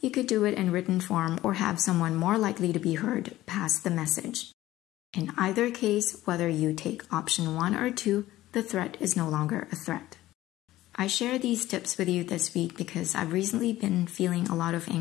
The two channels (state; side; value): quieter; right; 15.6 dB